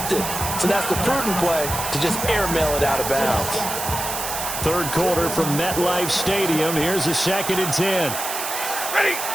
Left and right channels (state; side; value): noise; right; hiss, 5 dB below the sound